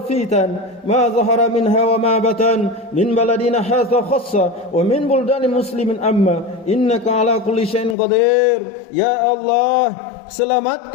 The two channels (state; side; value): drops out; right; at 8.0 s